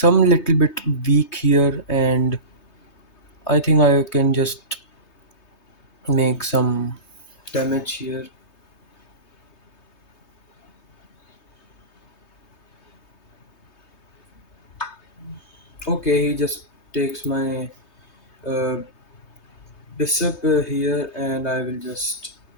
little bit weak here, and I think I can just make some damage here. Okay, he just takes my uh, bishop here, and I will just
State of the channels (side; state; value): right; late; 3.2 ms